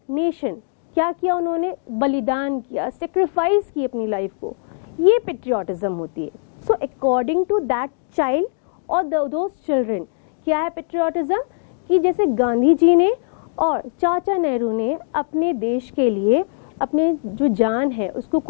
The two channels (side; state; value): right; silent; 65 dB below the other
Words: नेशन क्या किया, उन्होंने बलिदान किया, सेक्रीफाइस की अपनी लाइफ को, ये पेट्रियाटिज्म होती है। So according to that child और दोज चिल्ड्रन, क्या है पेट्रियाटिज्म? कि जैसे गांधी जी ने और चाचा नेहरू ने अपने देश के लिए अपने जो जान है उसको